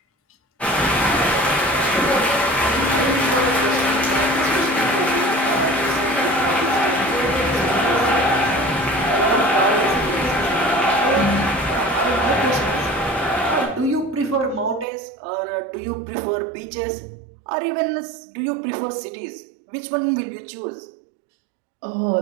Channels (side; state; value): left; drops out; at 14.9 s